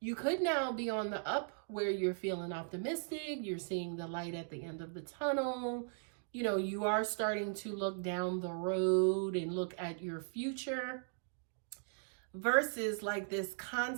you could now be on the up where you're feeling optimistic. You're seeing the light at the end of the tunnel. You know, you are starting to look down the road and look at your future versus like this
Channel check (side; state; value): left; silent; digital silence